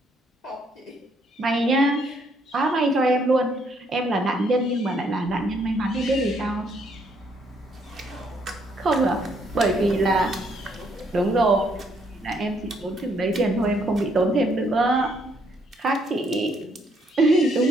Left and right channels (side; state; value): both; normal; correlation 0.70